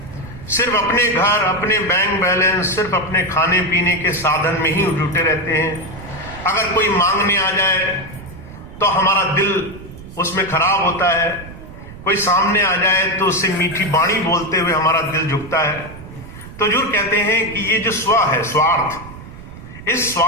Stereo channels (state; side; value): noise; right; rumble, 15 dB below the sound